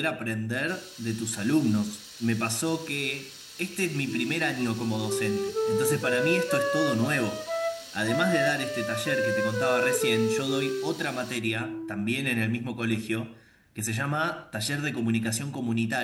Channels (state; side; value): identical; both; correlation 1.00